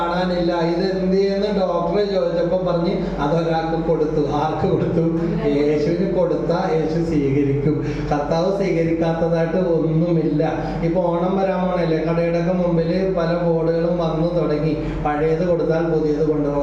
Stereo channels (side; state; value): both; identical; correlation 1.00